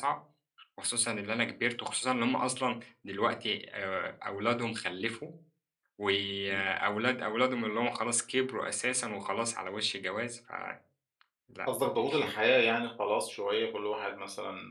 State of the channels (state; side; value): identical; both; correlation 1.00